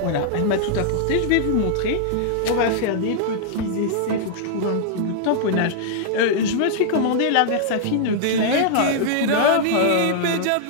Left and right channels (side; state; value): both; different; correlation -0.01